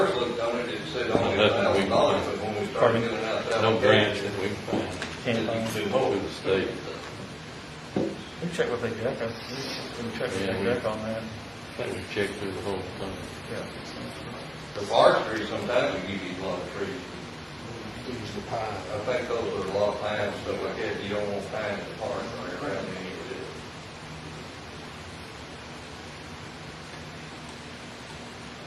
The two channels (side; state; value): both; identical; correlation 1.00